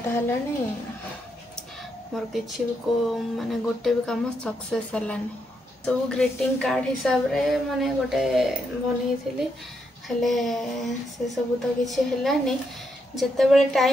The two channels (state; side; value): normal; both; correlation 0.80